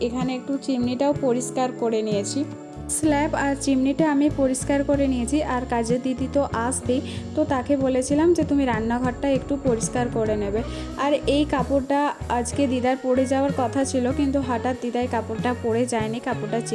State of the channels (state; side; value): identical; both; correlation 1.00